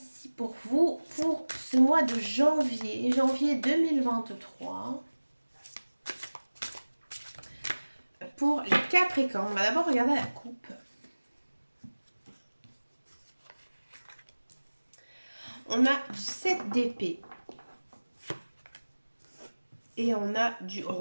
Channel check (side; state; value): both; inverted; correlation -1.00